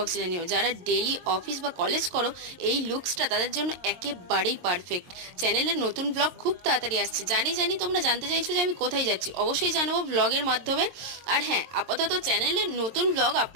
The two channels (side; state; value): left; late; 22 ms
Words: জানিও। যারা ডেইলি অফিস বা কলেজ করো, এই লুকসটা তাদের জন্য একেবারেই পারফেক্ট। চ্যানেলের নতুন ব্লগ খুব তাড়াতাড়ি আসছে। জানি জানি তোমরা জানতে চাইছো যে আমি কোথায় যাচ্ছি, অবশ্যই জানাবো ব্লগের মাধ্যমে। আর হ্যাঁ, আপাতত চ্যানেলে নতুন ব্লগ